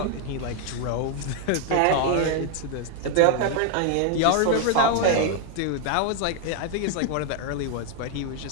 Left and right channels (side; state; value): both; different; correlation 0.01